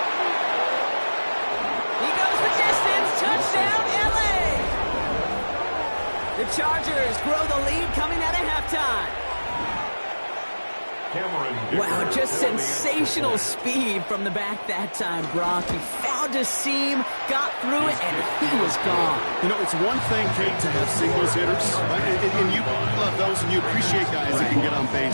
He goes the distance. Touchdown, LA. The Chargers grow the lead coming out of halftime. Wow, just sensational speed from the back that time, Brock. He found a seam, got through it, and he was gone. You know, it's one thing, Kate, to have singles hitters, right? And you love those and you appreciate guys that can get on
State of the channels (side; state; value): both; inverted; correlation -1.00